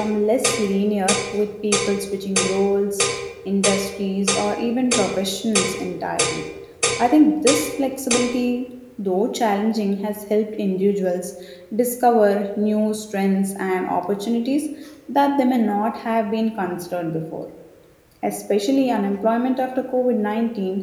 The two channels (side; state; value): both; identical; correlation 1.00